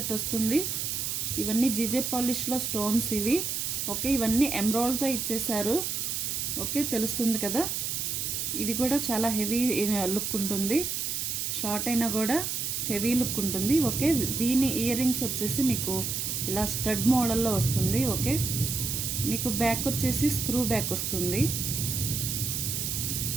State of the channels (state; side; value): noise; right; hiss, 1 dB below the sound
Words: వస్తుంది. ఇవన్నీ జీజే పాలిష్లో స్టోన్స్ ఇవి. ఓకే, ఇవన్నీ ఎమరాల్డ్తో ఇచ్చేసారు. ఓకే, తెలుస్తుంది కదా. ఇది కూడా చాలా హెవీ లుక్ ఉంటుంది, షార్ట్ అయినా కూడా హెవీ లుక్ ఉంటుంది. ఓకే, దీని ఇయర్ రింగ్స్ వచ్చేసి మీకు ఇలా స్టడ్ మోడల్లో వస్తుంది. ఓకే, మీకు బ్యాక్ వచ్చేసి స్క్రూ బ్యాక్ వస్తుంది,